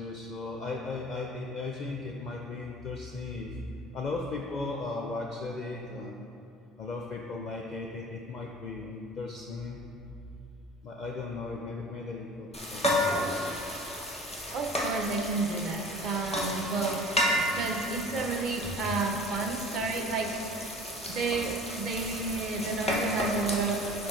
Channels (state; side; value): normal; both; correlation 0.43